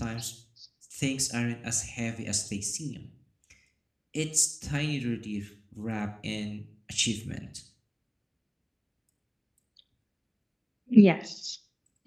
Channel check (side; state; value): both; identical; correlation 1.00